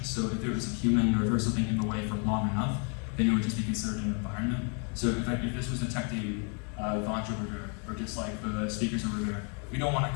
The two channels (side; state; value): right; quieter; 38.0 dB